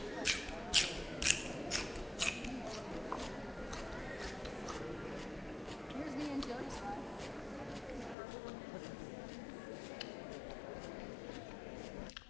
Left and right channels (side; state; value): right; drops out; at 8.2 s